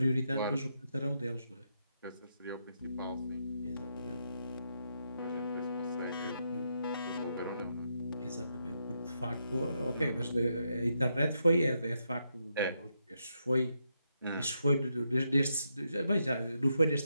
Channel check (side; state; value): both; inverted; correlation -0.81